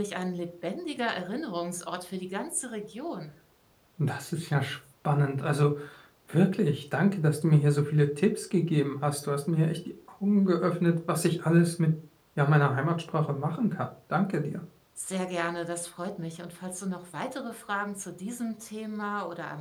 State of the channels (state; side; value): identical; both; correlation 1.00